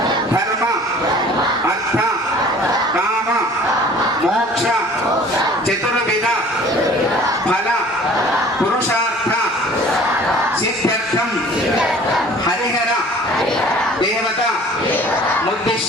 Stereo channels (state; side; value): normal; both; correlation 0.49